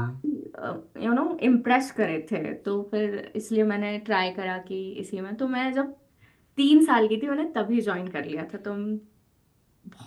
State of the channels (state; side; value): identical; both; correlation 1.00